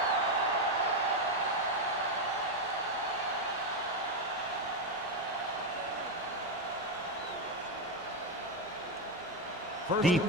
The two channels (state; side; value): normal; both; correlation 0.07